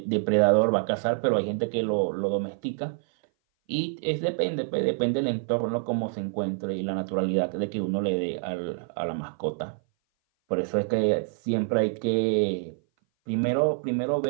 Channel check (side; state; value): left; silent; 57 dB below the other